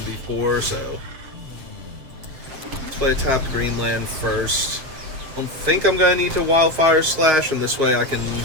before, so let's play tap Greenland first. I don't think I'm gonna need to Wildfire Slash, and this way I can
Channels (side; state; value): left; late; 7.6 ms